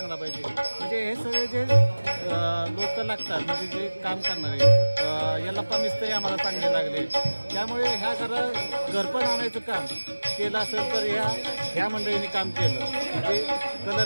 पाहिजे. म्हणजे हे सगळे जे लोक लागतात म्हणजे जे काम करणारे यल्लप्पा मिस्त्री आम्हाला चांगले लागले. त्यामुळे ह्या घरपण आणायचं काम केलं असेल तर ह्या मंडळींनी काम केलं. म्हणजे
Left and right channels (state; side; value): inverted; both; correlation -1.00